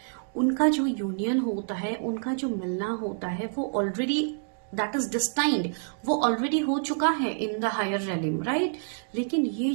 उनका जो यूनियन होता है, उनका जो मिलना होता है, वो ऑलरेडी दैट इज डिस्टाइंड, वो ऑलरेडी हो चुका है इन द हायर रेलिम. राइट, लेकिन ये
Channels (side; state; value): left; silent; digital silence